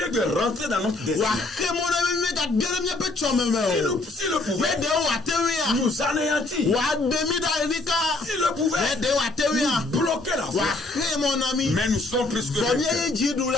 de rentrer dans notre destin. S'il le pouvait, nous anéantir. S'il le pouvait, nous bloquer la voie. Mais nous sommes plus que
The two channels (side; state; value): right; quieter; 3.0 dB